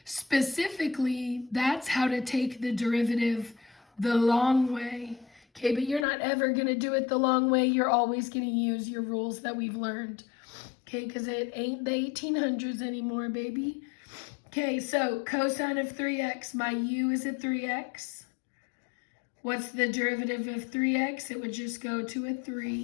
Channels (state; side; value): drops out; right; at 6.1 s